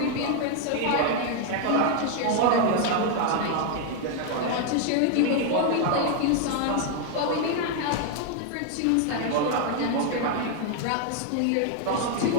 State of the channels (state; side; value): different; both; correlation 0.00